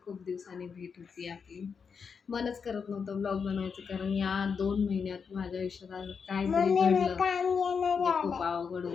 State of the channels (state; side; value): quieter; right; 6.0 dB